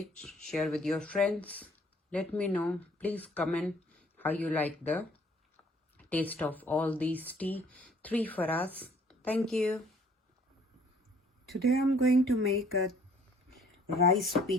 share with your friends. Let me know. Please comment how you like the taste of all these tea. 3 for us. Thank you. Today I'm going to make a rice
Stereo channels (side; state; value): both; normal; correlation 0.58